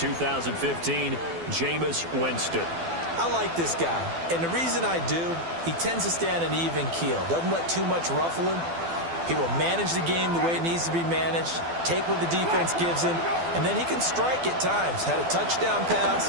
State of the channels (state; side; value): late; left; 12 ms